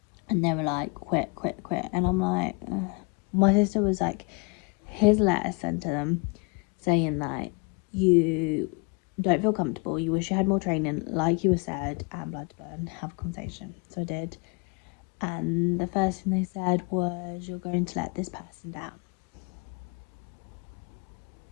and they were like, quit. And I'm like, ugh. My sister was like, here's a letter sent to them saying that you don't feel comfortable, you wish you had more training, like you were said, and blood to burn, have a conversation. So I did. And the first thing they said was, you're going to let this person down.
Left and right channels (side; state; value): right; quieter; 29.4 dB